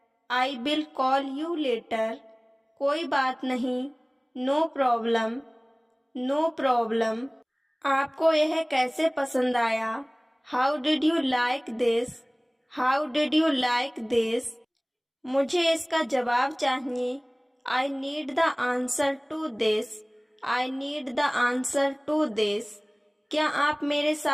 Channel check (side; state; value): both; identical; correlation 1.00